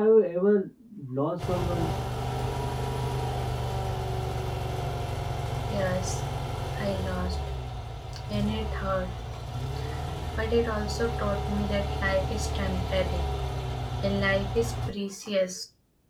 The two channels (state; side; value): identical; both; correlation 1.00